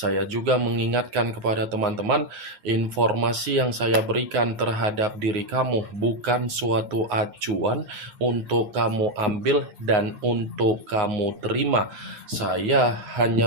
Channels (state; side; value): late; left; 9.5 ms